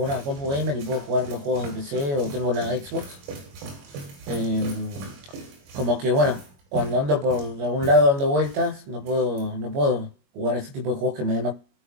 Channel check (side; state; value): left; late; 21 ms